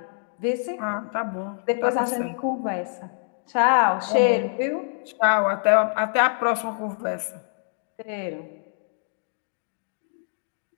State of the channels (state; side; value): silent; right; digital silence